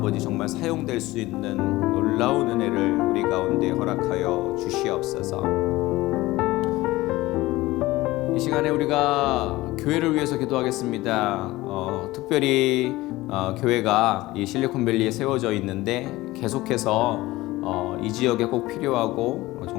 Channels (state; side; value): quieter; right; 18.7 dB